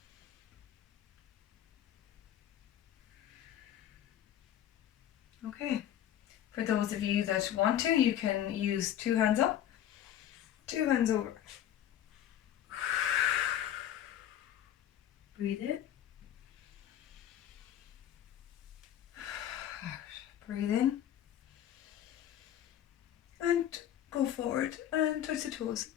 Okay. For those of you that want to, you can use 2 hands up, 2 hands over. Breathe in. Out. Breathe in. And go forward and touch the toes.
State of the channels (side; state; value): right; quieter; 11.0 dB